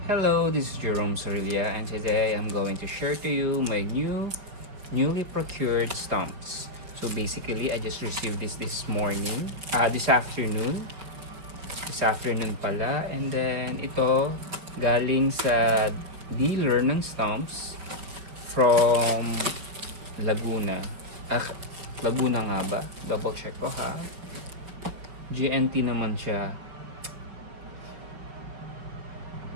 Hello, this is Jerome Sorilia, and today I'm going to share to you my newly procured stamps. So basically, I just received this morning, this afternoon pala, and then ito galing sa dealer ng stamps from Laguna. Laguna nga ba? Double check ko ha. GNT naman siya.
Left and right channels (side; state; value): left; late; 5.3 ms